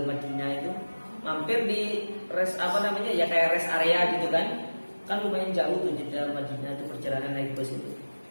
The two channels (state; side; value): inverted; both; correlation -1.00